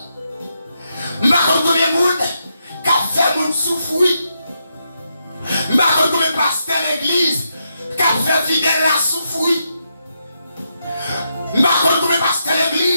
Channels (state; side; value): inverted; both; correlation -0.82